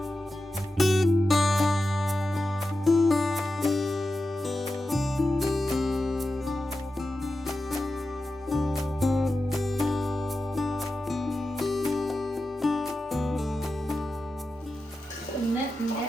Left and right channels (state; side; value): normal; both; correlation 0.91